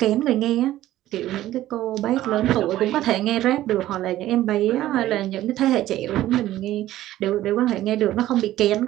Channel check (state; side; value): quieter; left; 14.3 dB